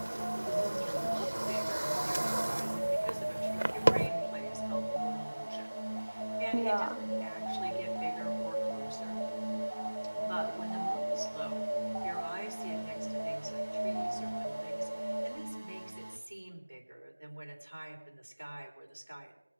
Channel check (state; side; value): inverted; both; correlation -1.00